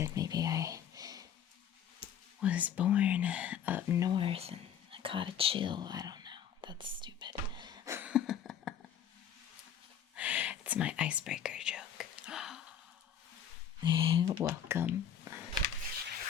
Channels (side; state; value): right; quieter; 8.7 dB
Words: maybe I was born up north and I caught a chill. I don't know. That's stupid. It's my icebreaker joke. Welcome.